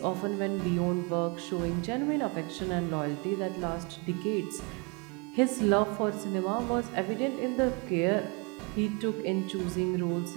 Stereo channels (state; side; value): quieter; left; 31.3 dB